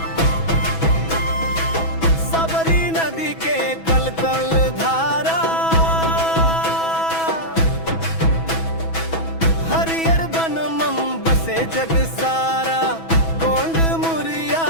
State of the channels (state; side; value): late; right; 6.1 ms